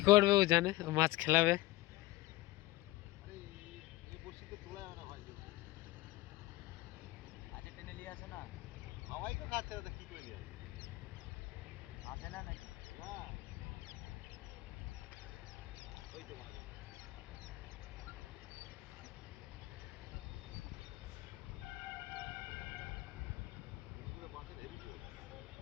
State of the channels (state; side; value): quieter; right; 18.9 dB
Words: করবে ও জানে, ও মাছ খেলাবে। আরে এই বড়শিতে তোলা যাবে না ভাই। আচ্ছা টেনে নিয়ে আসে না, হাওয়াই তো খাচ্ছে না, কি করে নিয়ে আসে না নাকি? না ওই তো মাছ মাছের হেভি তো